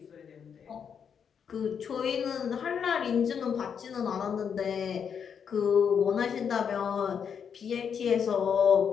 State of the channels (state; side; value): quieter; right; 7.3 dB